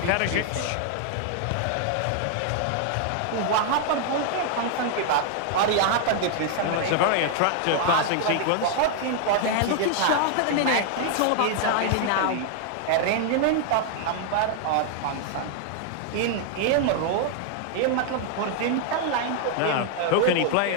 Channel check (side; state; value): both; different; correlation 0.00